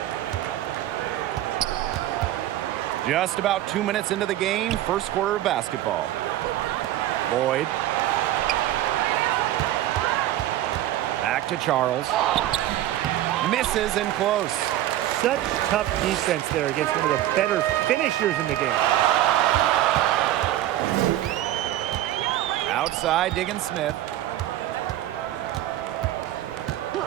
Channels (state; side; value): quieter; left; 13.6 dB